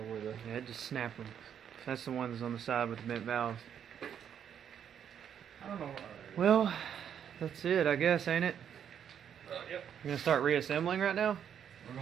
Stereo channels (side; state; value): left; quieter; 8.7 dB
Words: where the... Yeah, it just snapped them. That's the ones on the side with the bent valves. I don't know. Well, that's it, I guess, ain't it? Yep. You're gonna start reassembling right now? We're